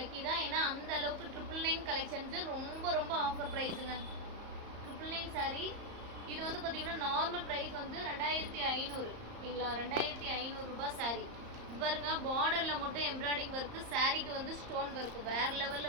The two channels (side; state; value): left; late; 34 ms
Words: தான். ஏன்னா அந்த அளவுக்கு 999 கலெக்ஷன்ஸு ரொம்ப ஆஃபர் ப்ரைஸுங்க. 999 சாரி இது வந்து பார்த்தீங்கன்னா நார்மல் ப்ரைஸ் வந்து 2500 ஓகேங்களா. 2500 ரூபாய் சாரி. பாருங்க பார்டரில் மட்டும் எம்ப்ராய்டிங் ஒர்க்கு, சாரிக்கு வந்து ஸ்டோன் ஒர்க்கு வேறு லெவலில்